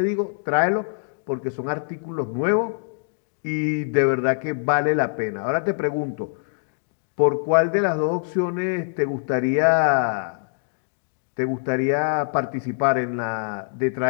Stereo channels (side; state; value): right; silent; digital silence